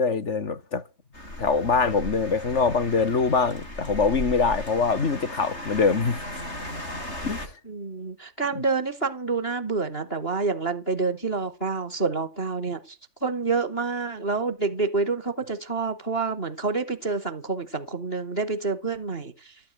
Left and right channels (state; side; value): late; right; 3.3 ms